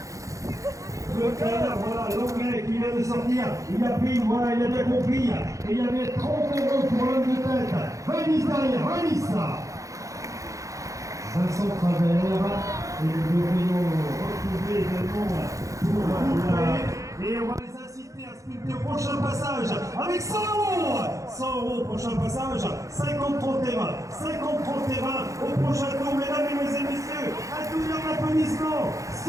trailer, voilà, l'anglais qui vient de sortir, il a pris, voilà, il a bien compris, et il y avait 30 € pour l'homme de tête. Vanis derrière, Vanis là. Vincent Travers, et nous devrions retrouver également pour la... Et on va les inciter à sculpter au prochain passage avec 100 €. 100 € prochain passage, 50 30 et 20, 50 30 et 20 au prochain tour, mesdames et messieurs, un double applaudissement,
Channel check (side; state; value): left; late; 0.16 ms